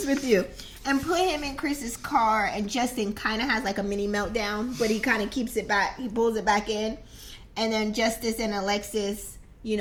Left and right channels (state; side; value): identical; both; correlation 1.00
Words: with you. And put him in Chris's car, and Justin kind of has like a mini meltdown, but he kind of keeps it back. He pulls it back in, and then Justice and Alexis, you